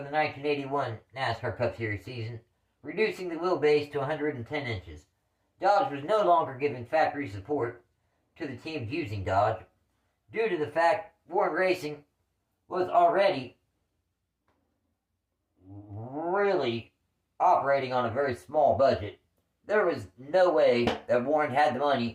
1981 NASCAR Cup Series season, reducing the wheelbase to 110 inches. Dodge was no longer giving factory support to the teams using Dodge, due to the fact Warren Racing was already really operating on a very small budget. There was no way that Warren had the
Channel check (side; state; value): both; identical; correlation 1.00